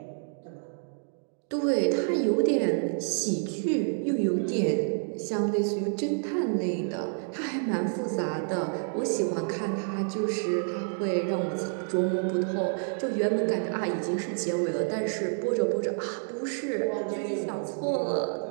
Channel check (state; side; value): silent; left; 59 dB below the other